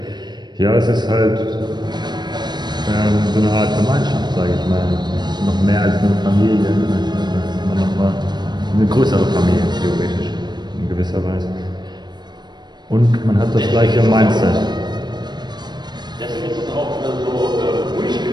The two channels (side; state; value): left; late; 0.21 ms